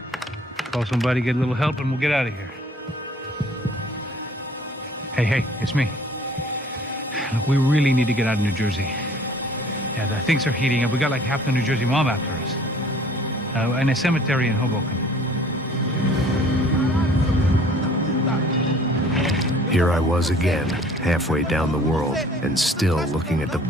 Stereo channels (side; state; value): both; normal; correlation 0.53